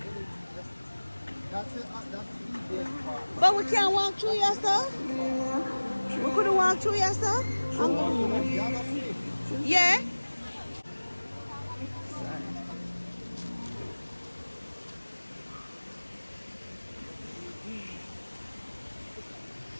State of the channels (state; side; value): inverted; both; correlation -1.00